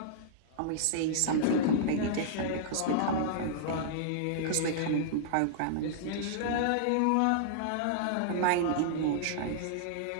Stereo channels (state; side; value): different; both; correlation -0.02